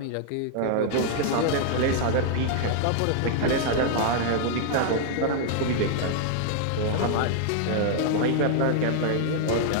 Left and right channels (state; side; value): different; both; correlation -0.01